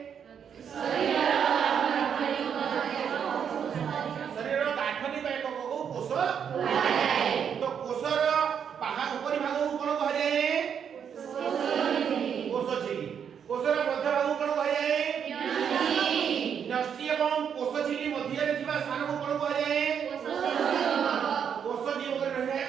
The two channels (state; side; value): quieter; left; 7.8 dB